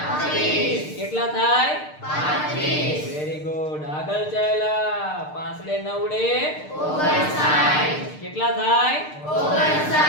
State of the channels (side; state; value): right; late; 6.6 ms